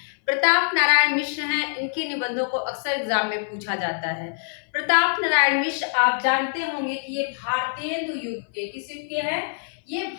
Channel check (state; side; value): silent; right; 57 dB below the other